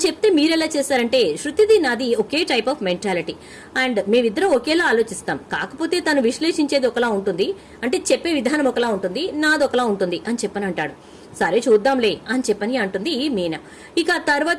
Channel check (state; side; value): identical; both; correlation 1.00